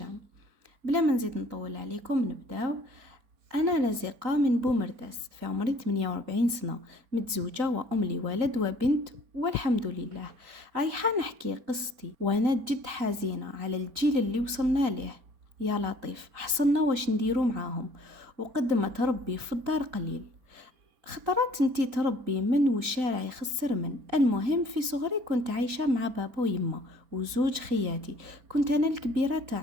بلا ما نزيد نطول عليكم نبداو. أنا رزيقة من بومرداس، في عمري 48 سنة، متزوجة وأم لولد وبنت والحمد لله. رايحة نحكي قصتي وأنا جد حزينة على الجيل اللي وصلنا ليه. يا لطيف حصلنا واش نديرو معاهم، وقد ما تربي في الدار قليل. خطرات انتي تربي من والشارع يخسر من. المهم في صغري كنت عايشة مع بابا ويما وزوج خياتي. كنت أنا الكبيرة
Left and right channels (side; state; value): left; late; 3.9 ms